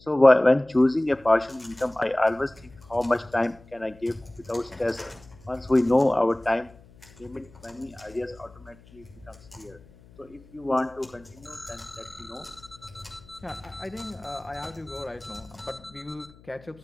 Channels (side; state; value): left; noise; hum, 24 dB below the sound